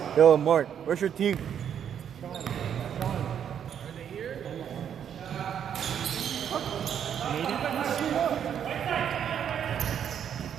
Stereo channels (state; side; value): quieter; left; 8.8 dB